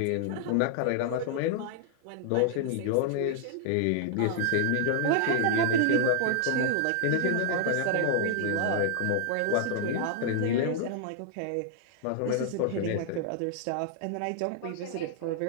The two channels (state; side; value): different; both; correlation 0.00